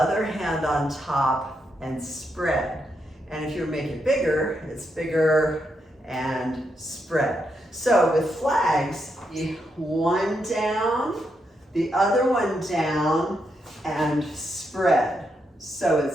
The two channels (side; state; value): both; normal; correlation 0.81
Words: hand on top, and spread. And if you make it bigger, it's bigger and spread. So with flags, one down, the other one down, and spread. So